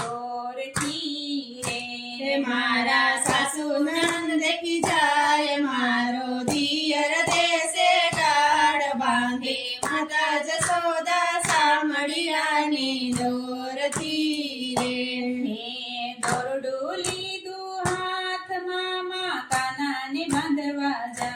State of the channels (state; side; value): identical; both; correlation 1.00